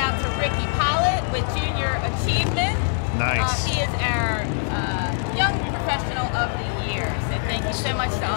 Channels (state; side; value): silent; right; 63 dB below the other